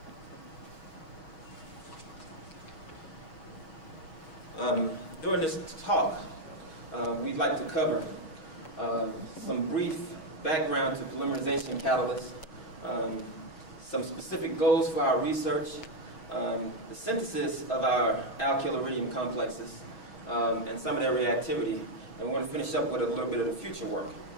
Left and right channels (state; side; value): late; right; 6.3 ms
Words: During this talk, we'd like to cover some brief background to polymerization catalysts, some specific goals for our research, the synthesis of our alkyl-iridium complexes, and some of their reactivity. And we're going to finish up with a little bit of the future work.